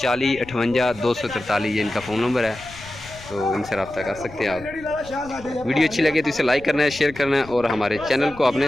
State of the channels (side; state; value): left; noise; rumble, 18 dB below the sound